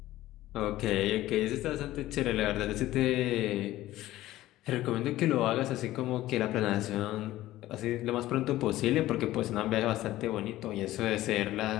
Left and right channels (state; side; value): quieter; right; 15.5 dB